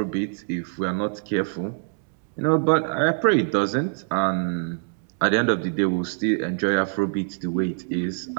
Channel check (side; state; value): left; silent; digital silence